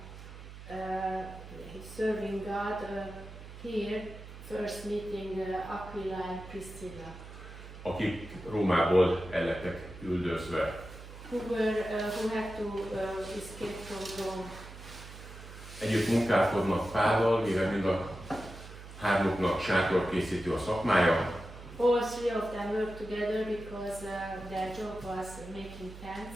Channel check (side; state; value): right; noise; hum, 14 dB below the sound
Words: serving God here, first meeting Aquila and Priscilla. Akik Rómából el lettek üldözve. Who had to escape from Rome. Együtt munkálkodnak Pállal, mivel mind a hármuknak sátorkészítő a szakmája. All three of them worked together because their job was making